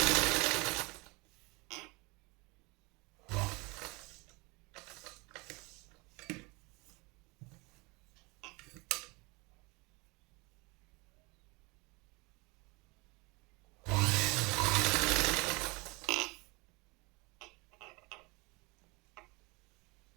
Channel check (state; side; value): quieter; left; 26.6 dB